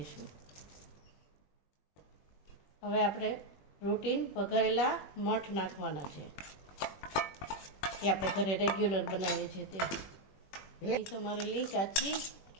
હવે આપણે રૂટીન વઘારેલા મઠ નાખવાના છે, એ આપણે ઘરે રેગ્યુલર બનાવીએ છીએ તે. ભેળ સમારેલી કાચી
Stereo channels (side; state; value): right; late; 21 ms